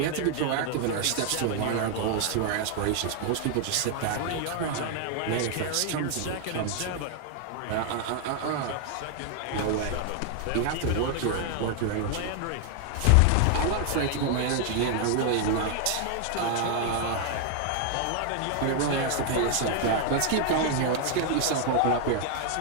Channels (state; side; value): different; both; correlation 0.00